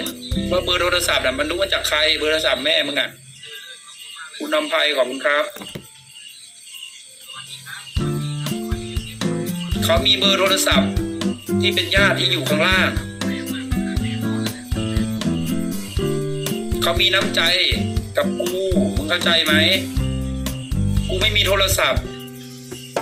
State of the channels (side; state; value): both; identical; correlation 1.00